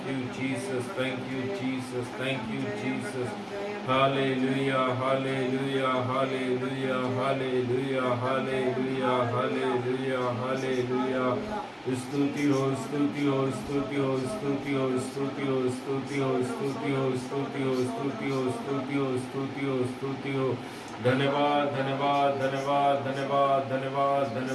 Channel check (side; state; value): both; identical; correlation 1.00